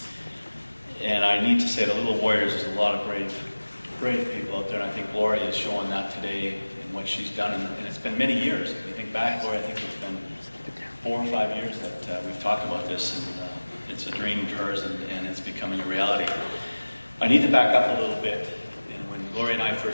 And I need to say the Little Warriors is a lot of brave people out there, and I think Gloria is showing that today in what she's done. And it's been many years. If you think back, Gloria, I think it's been 4 or 5 years that we've talked about this, and it's a dream of hers, and it's becoming a reality. I need to back up a little bit. And when Gloria and I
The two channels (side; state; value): both; inverted; correlation -1.00